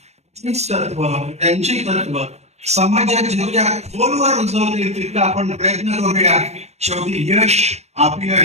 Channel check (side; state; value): left; late; 0.32 ms